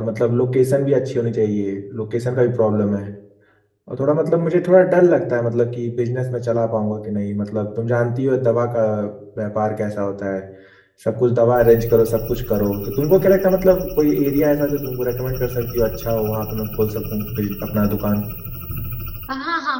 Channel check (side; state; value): both; identical; correlation 1.00